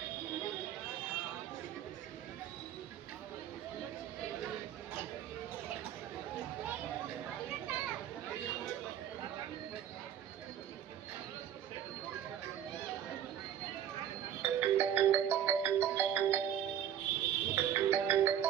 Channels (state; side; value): quieter; left; 9.9 dB